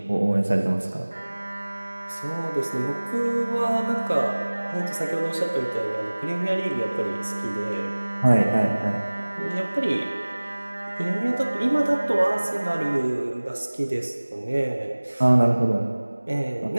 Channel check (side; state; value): both; inverted; correlation -1.00